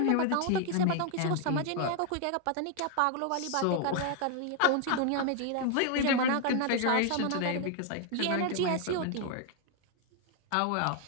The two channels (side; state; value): both; different; correlation 0.00